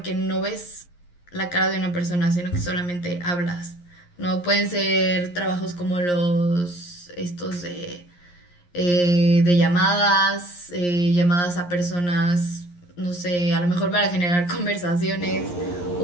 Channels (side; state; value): right; late; 11 ms